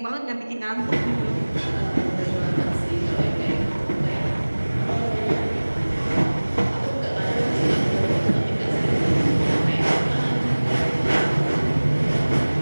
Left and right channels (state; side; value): inverted; both; correlation -1.00